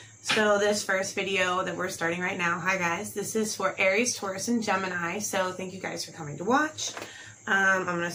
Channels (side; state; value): both; identical; correlation 1.00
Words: So this first video that we're starting right now, hi guys, this is for Aries, Taurus, and Gemini. So thank you guys for coming to watch. I'm going to